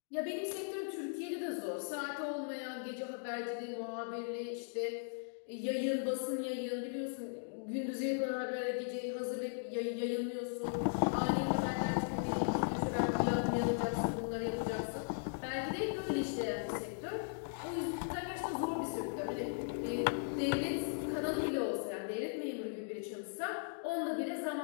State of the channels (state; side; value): silent; right; digital silence